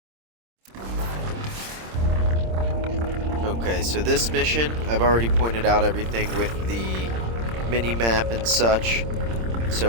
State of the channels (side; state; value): left; late; 26 ms